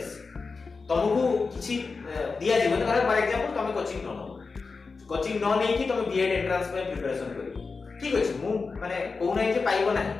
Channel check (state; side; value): quieter; right; 4.5 dB